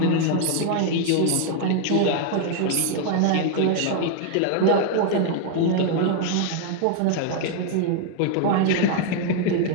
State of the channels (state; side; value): different; both; correlation 0.00